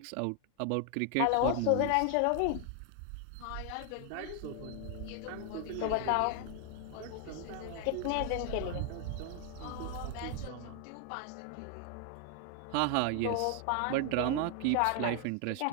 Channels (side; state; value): both; different; correlation 0.00